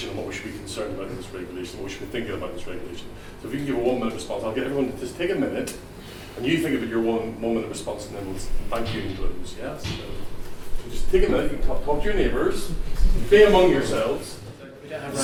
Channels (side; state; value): both; identical; correlation 1.00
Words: and what we should be concerned about in this regulation, what we should be thinking about in this regulation. So if you can give a 1 minute response, I'll get everyone to just take a minute and you think about your 1 minute response and then we'll thank you and close. Yes? So just take a minute, you can talk to your neighbours, be among yourselves.